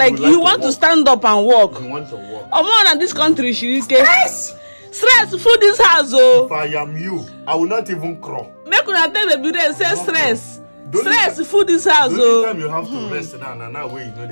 you want to stand up and walk. You want to walk. More than this country, Stress. Stress. Food this house, oh. If I am you, I will not even crawl. Make una tell Baby Rain say stress. Stress. Food this house, oh. Time you have to rest now. Now where you know the.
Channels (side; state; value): both; inverted; correlation -1.00